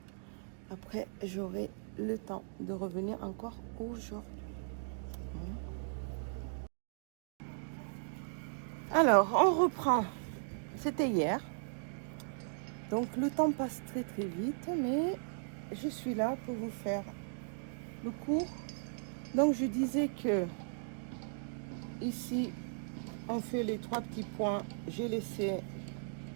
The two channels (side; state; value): left; silent; digital silence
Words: après, j'aurai le temps de revenir encore aujourd'hui. Alors, on reprend. C'était hier. Donc, le temps passe très très vite, mais je suis là pour vous faire le cours. Donc, je disais que ici, on fait les 3 petits points. J'ai laissé,